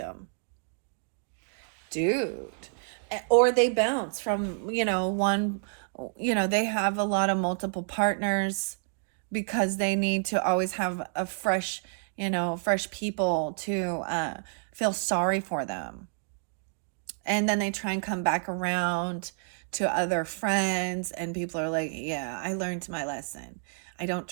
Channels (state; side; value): silent; left; 58 dB below the other